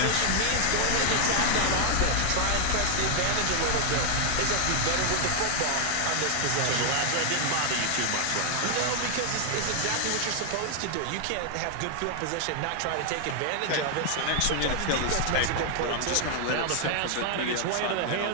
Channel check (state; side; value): different; both; correlation 0.00